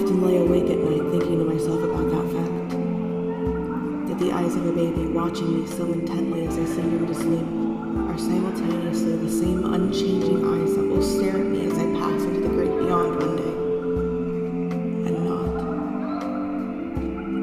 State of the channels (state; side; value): identical; both; correlation 1.00